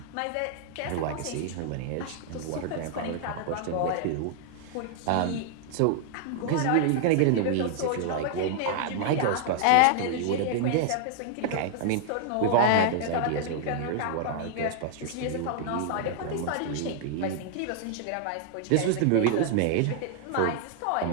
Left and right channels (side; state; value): both; different; correlation -0.01